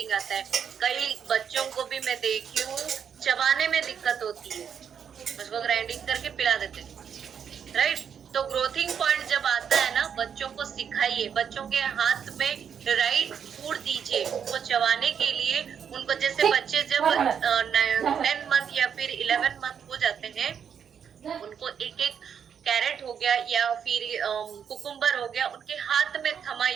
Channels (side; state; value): left; quieter; 7.7 dB